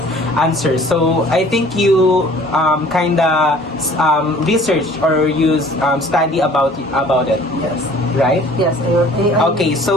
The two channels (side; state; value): both; normal; correlation 0.51